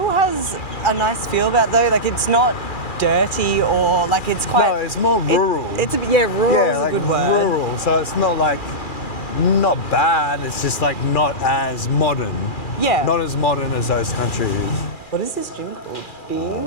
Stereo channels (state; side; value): late; right; 2.4 ms